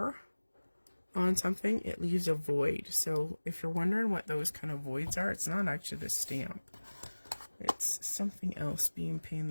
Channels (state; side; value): inverted; both; correlation -1.00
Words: on something, it leaves a void. So if you're wondering what those kind of voids are, it's not actually the stamp. It's something else being pain in